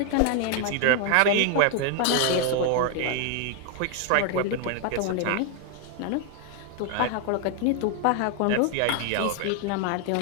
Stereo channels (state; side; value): different; both; correlation 0.00